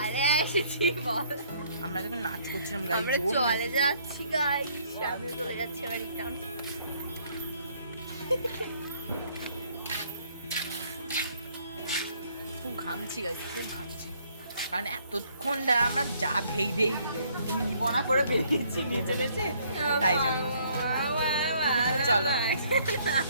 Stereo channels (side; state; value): both; inverted; correlation -0.64